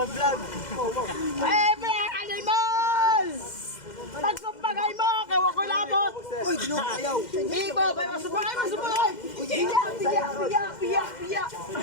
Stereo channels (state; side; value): late; right; 2.1 ms